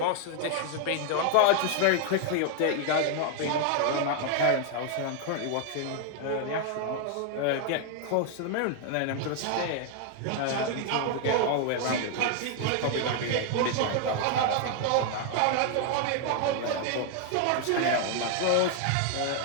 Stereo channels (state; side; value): different; both; correlation 0.00